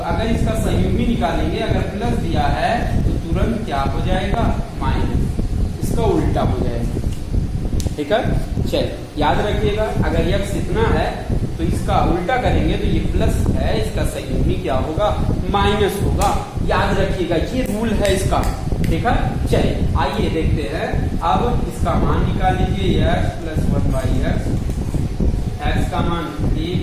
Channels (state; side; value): identical; both; correlation 1.00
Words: अगर इसका संयुग्मी निकालेंगे, अगर प्लस दिया है तो तुरंत क्या हो जाएगा, माइनस, इसका उल्टा हो जाएगा। ठीक है। चलिए याद रखिएगा, अगर x इतना है तो इसका उल्टा करेंगे तो ये प्लस है, इसका संयुग्मी क्या होगा, माइनस होगा। याद रखिएगा, ये रूल है इसका, ठीक है। चलिए आइए देखते हैं, अब इसका मान निकाल लीजिए, x प्लस 1/x, x का मान 3